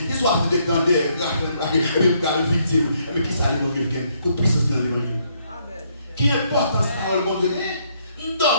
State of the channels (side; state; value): both; inverted; correlation -0.72